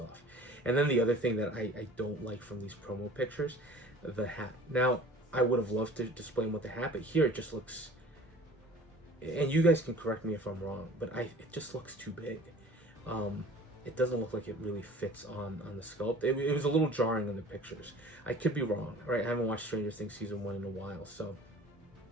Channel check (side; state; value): both; normal; correlation 0.46